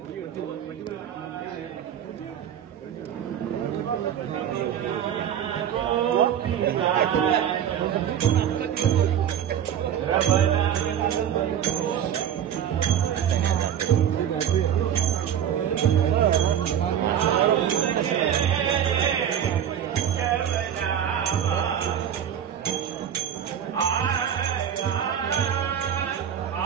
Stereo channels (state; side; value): quieter; left; 9.5 dB